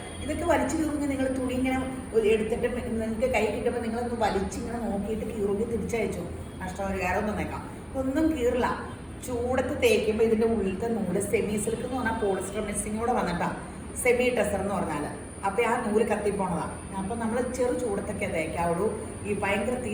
ഇതൊക്കെ വലിച്ചു കീറുമെങ്കിൽ നിങ്ങൾ തുണി ഇങ്ങനെ എടുത്തിട്ട് നിങ്ങൾക്ക് കൈ കിട്ടുമ്പോൾ നിങ്ങളൊന്ന് വലിച്ചിങ്ങനെ നോക്കിയിട്ട് കീറുമെങ്കിൽ തിരിച്ചയച്ചു. നഷ്ടപരിഹാരം ഒന്നും നേക്കാം. ഒന്നും കീറില്ല. ചൂടത്ത് തേക്കുമ്പോൾ ഇതിൻ്റെ ഉള്ളിലത്തെ നൂല് സെമി സിൽക്ക് എന്ന് പറഞ്ഞാൽ പോളിസ്റ്റർ മിക്സിങ് കൂടെ വന്നിട്ടാണ് സെമി ടെസർ എന്ന് പറഞ്ഞാൽ. അപ്പോൾ ആ നൂല് കത്തിപ്പോണതാണ്. അപ്പോൾ നമ്മൾ ചെറു ചൂടത്തൊക്കെ തേക്കാവുള്ളൂ. ഈ ഭയങ്കര തീ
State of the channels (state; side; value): identical; both; correlation 1.00